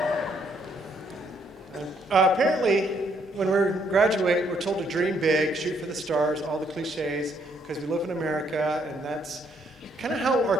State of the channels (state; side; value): normal; both; correlation 0.70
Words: Apparently, when we graduate, we're told to dream big, shoot for the stars, all the cliches, because we live in America, and that's kind of how